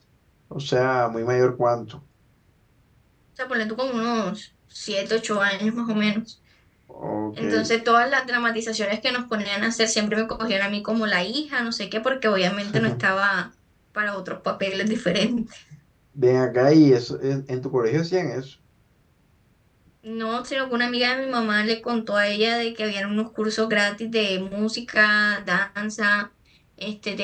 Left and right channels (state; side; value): identical; both; correlation 1.00